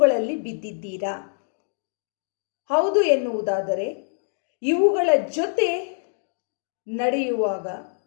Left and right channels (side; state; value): right; silent; digital silence